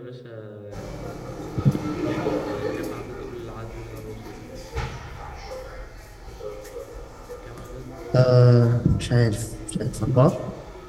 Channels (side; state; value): both; identical; correlation 1.00